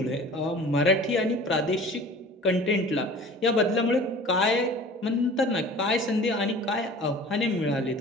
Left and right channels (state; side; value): normal; both; correlation 0.43